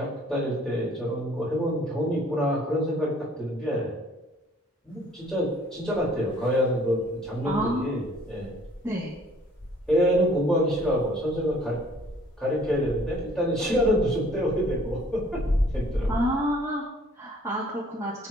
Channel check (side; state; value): both; normal; correlation 0.57